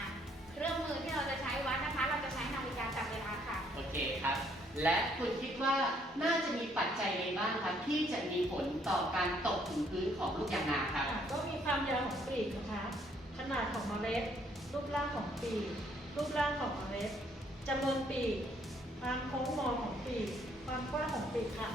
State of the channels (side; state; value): both; normal; correlation 0.67